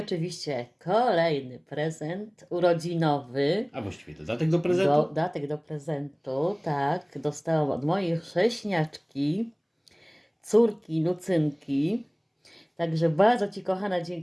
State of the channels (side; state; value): both; identical; correlation 1.00